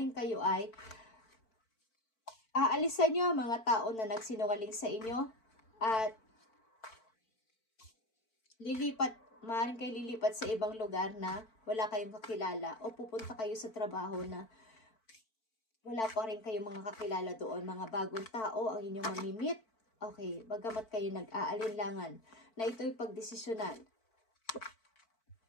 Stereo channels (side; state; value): right; late; 4.5 ms